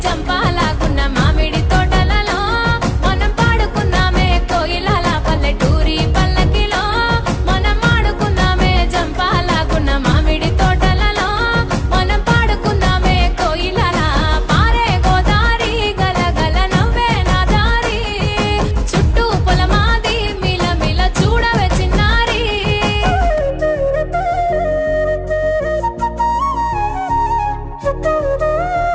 చంపాలగున్న మామిడి తోటలలో మనం పాడుకుందామే కోయిలల పల్లెటూరి పల్లకిలో మనం ఆడుకుందామే చంపాలగున్న మామిడి తోటలలో మనం పాడుకుందామే కోయిలల పారే గోదారి గలగల నవ్వే నా దారి చుట్టూ పొలమాది మిల మిల చూడవే చిన్నారి Thank you.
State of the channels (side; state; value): both; identical; correlation 1.00